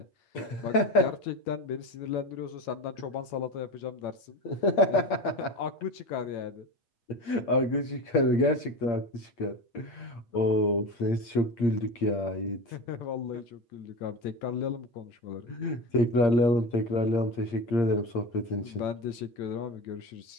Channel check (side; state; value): right; late; 8.6 ms